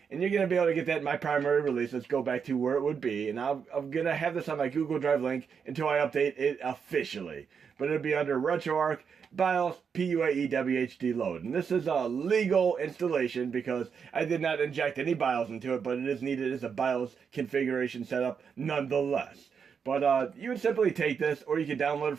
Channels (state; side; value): quieter; left; 6.5 dB